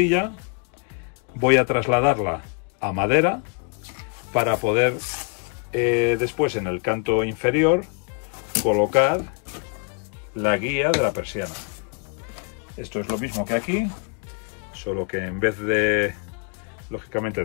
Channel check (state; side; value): quieter; right; 38.4 dB